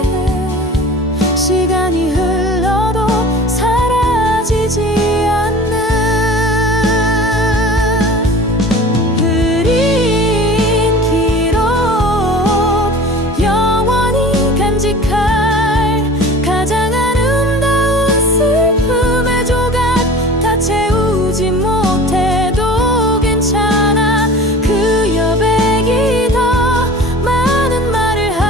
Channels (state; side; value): normal; both; correlation 0.40